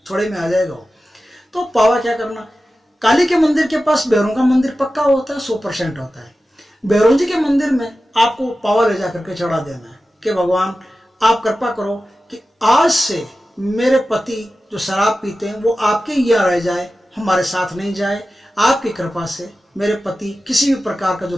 थोड़े में आ जाएगा वो। तो पावा क्या करना, काली के मंदिर के पास भैरों का मंदिर पक्का होता है, 100% होता है। भैरव जी के मंदिर में आपको पावा ले जाकर के चढ़ा देना है कि भगवान आप कृपा करो कि आज से मेरे पति जो शराब पीते हैं वो आपके यहाँ रह जाए, हमारे साथ नहीं जाए। आपकी कृपा से मेरे पति किसी भी प्रकार का जो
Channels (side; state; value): both; normal; correlation 0.94